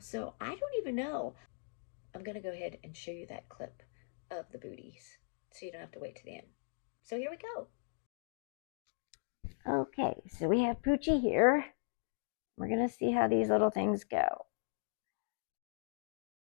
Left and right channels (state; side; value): silent; right; digital silence